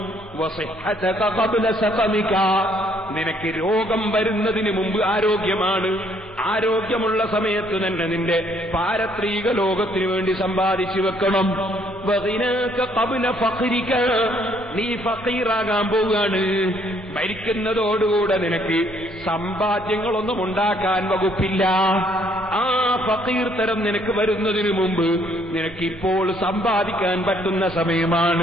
വസിഹ്ഹതക ഖബ്ല സഖമിക, നിനക്ക് രോഗം വരുന്നതിന് മുമ്പ് ആരോഗ്യമാണ്. ആരോഗ്യമുള്ള സമയത്ത് തന്നെ നിന്റെ പാരത്രിക ലോകത്തിനു വേണ്ടി സമ്പാദിച്ചു വെക്കണം. വഗിനാക ഖബ്ല ഫഖ്രിക, നീ ഫഖീറാകാൻ പോവുകയാണ്. മരിക്കുന്നതോടുകൂടെ നിനക്ക് സമ്പാദ്യങ്ങളൊന്നും ഉണ്ടാക്കാൻ വകുപ്പില്ല. ആ ഫഖീർ തരം നിനക്ക് വരുന്നതിന് മുമ്പ് നിനക്കിപ്പോൾ സമ്പാദിക്കാൻ പറ്റുന്ന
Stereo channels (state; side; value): normal; both; correlation 0.66